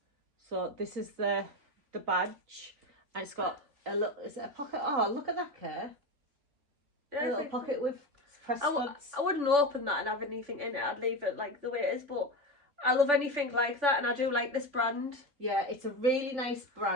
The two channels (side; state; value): left; late; 3.5 ms